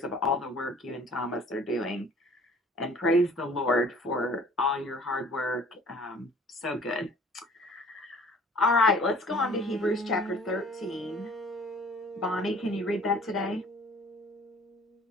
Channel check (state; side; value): normal; both; correlation 0.51